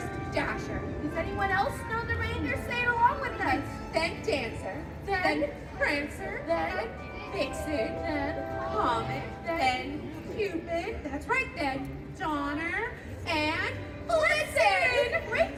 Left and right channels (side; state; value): both; identical; correlation 1.00